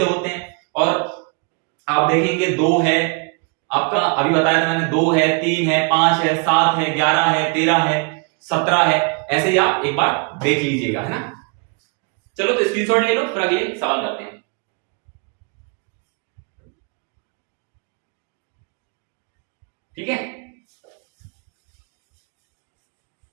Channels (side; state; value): left; quieter; 33.4 dB